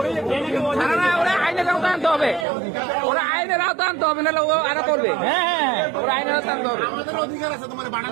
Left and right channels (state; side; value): drops out; left; at 2.5 s